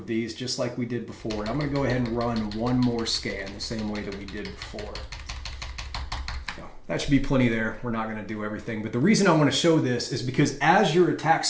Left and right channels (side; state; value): both; identical; correlation 1.00